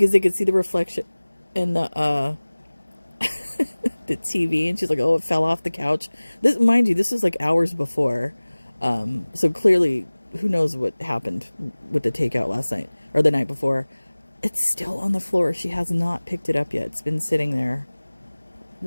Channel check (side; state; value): both; inverted; correlation -1.00